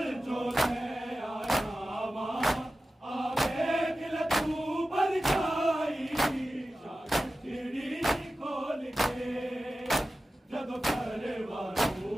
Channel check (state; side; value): normal; both; correlation 0.94